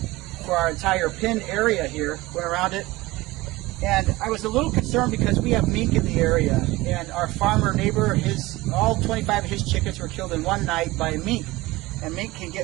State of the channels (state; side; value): quieter; left; 19.6 dB